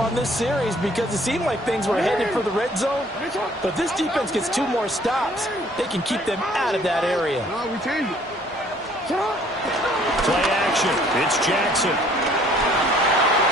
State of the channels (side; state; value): both; normal; correlation 0.59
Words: this series because it seemed like things were headed for the red zone. But if this defense gets 2 more stops, they can keep them out of that area. No, we changed it. Play action. It's Jackson.